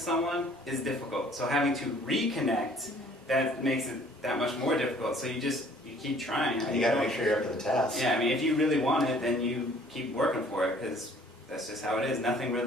is difficult. So having to reconnect, that makes it that much more difficult. So you keep trying. You got to make sure you're up to the task. Yeah, if you really want it, then you keep working for it, because that's just how it is. Nothing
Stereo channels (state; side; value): normal; both; correlation 0.56